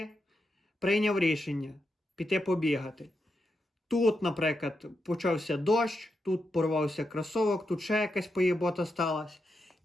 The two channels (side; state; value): both; normal; correlation 0.85